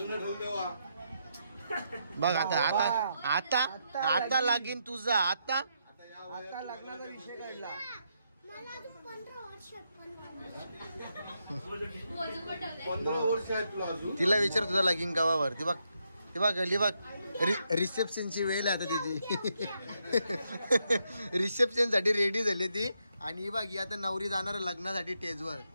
बघ. आता आता आता आता लागीन तुझा. आता लग्नाचा विषय काढला. तिला विचार तुझा लगीन गावावर. ती बघ ती बघ गली बघ रिसेप्शनची वेळ आहे आता तिची. रिसेप्शन साठी रेडी झाली ती. आणि ही बघ ही आता नवरी जाणार लग्नासाठी स्टेजवर,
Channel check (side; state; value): both; inverted; correlation -0.80